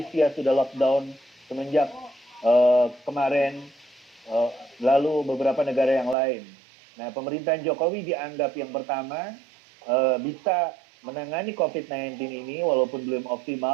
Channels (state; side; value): drops out; left; at 6.2 s